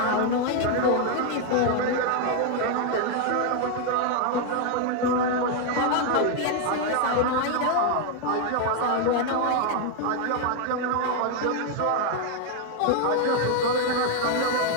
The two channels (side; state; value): both; different; correlation 0.01